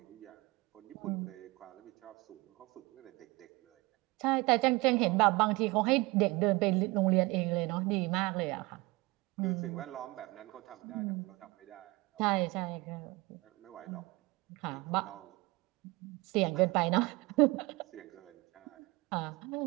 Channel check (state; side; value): quieter; left; 23.6 dB